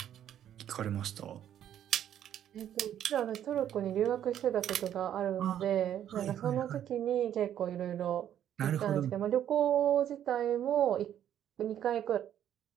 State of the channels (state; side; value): quieter; left; 10.5 dB